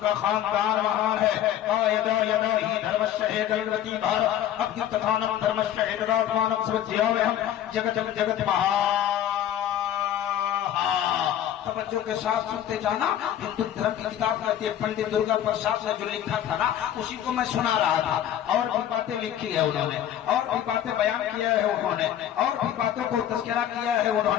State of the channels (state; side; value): quieter; right; 10.9 dB